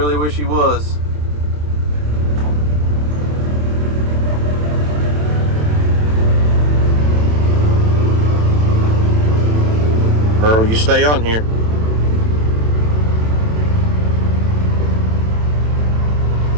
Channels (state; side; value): late; left; 27 ms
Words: wish he was. Earl, you stay on here.